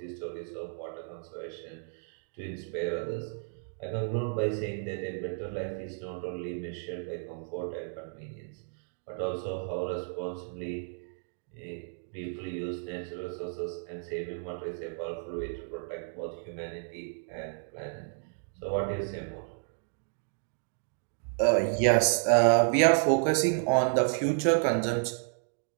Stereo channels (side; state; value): left; silent; digital silence